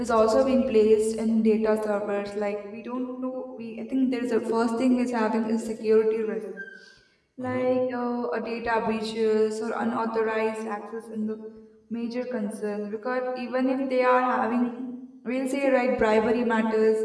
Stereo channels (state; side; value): identical; both; correlation 1.00